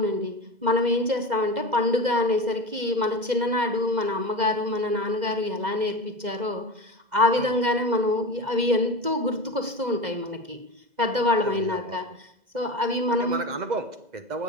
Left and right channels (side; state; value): left; late; 2.0 ms